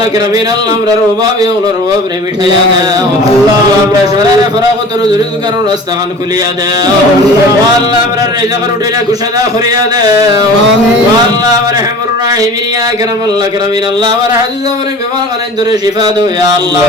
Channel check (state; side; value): normal; both; correlation 0.41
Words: কিরামিন আল্লাহ আমরার অভাবে ওনার অভাব রে মিটাইয়া দাও আল্লাহ আমরা শরীরে ফরাগত রুজুরিত কারণ রাস্তা খান খুলিয়া দাও ও আল্লাহ আমরার রিজক রুটিরে কুশাদা করিয়া দাও ও আল্লাহ রহমুর রাহিমিন ইয়া কিরামাল্লাহ কিরামিন আল্লাহ আমার হাদিস আমরে বিমার কানে ধরে শিফা দাও ইয়া আল্লাহ